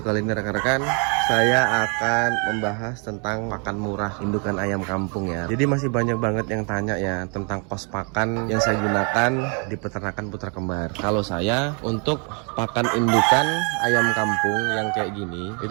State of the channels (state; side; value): quieter; left; 37.1 dB